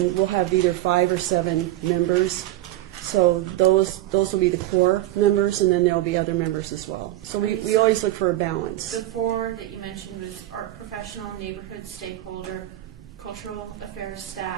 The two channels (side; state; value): left; quieter; 15.2 dB